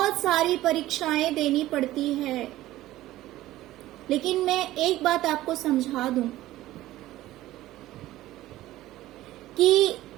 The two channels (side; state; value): left; quieter; 15.7 dB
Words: सारी परीक्षाएं देनी पड़ती है। लेकिन मैं एक बात आपको समझा दूं कि